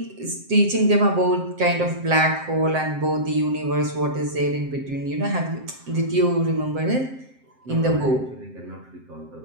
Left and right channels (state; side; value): late; left; 7.6 ms